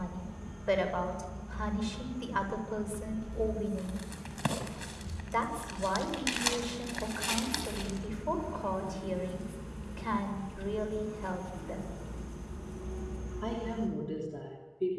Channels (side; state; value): both; identical; correlation 1.00